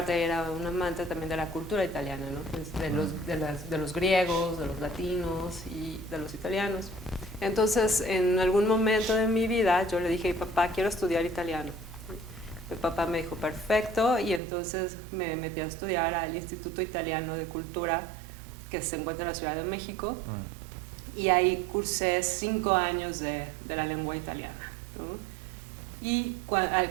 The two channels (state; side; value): drops out; left; at 14.4 s